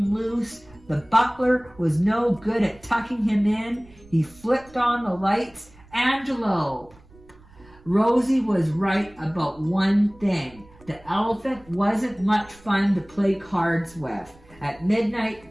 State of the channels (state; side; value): noise; right; rumble, 25 dB below the sound